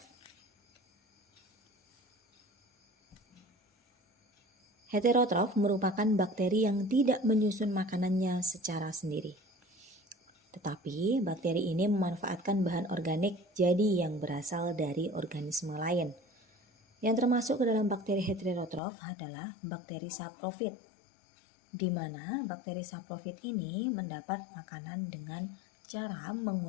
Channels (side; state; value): right; drops out; at 18.8 s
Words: Heterotrof merupakan bakteri yang tidak menyusun makanannya secara sendiri. Tetapi bakteri ini memanfaatkan bahan organik jadi yang berasal dari organisme lain. Yang termasuk ke dalam bakteri heterotrof adalah bakteri saprofit, di mana bakteri saprofit ini mendapat makanan dengan cara